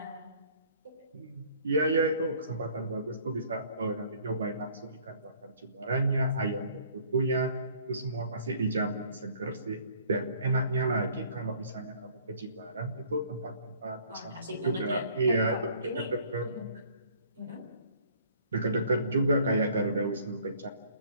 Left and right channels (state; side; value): inverted; both; correlation -0.57